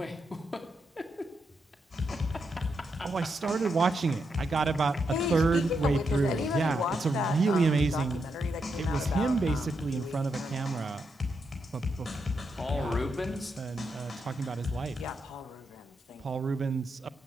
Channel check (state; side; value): normal; both; correlation 0.82